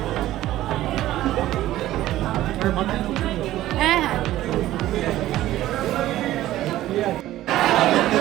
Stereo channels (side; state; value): left; quieter; 14.6 dB